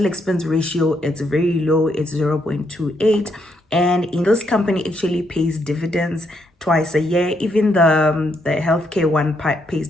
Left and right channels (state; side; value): normal; both; correlation 0.76